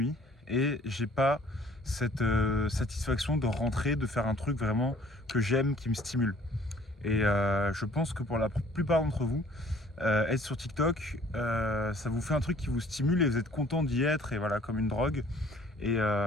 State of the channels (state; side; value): normal; both; correlation 0.55